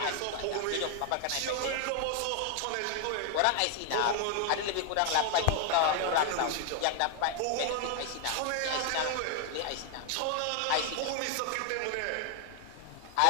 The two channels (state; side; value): different; both; correlation 0.00